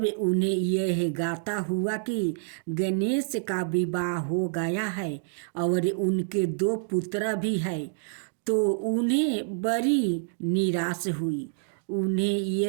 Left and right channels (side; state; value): left; silent; digital silence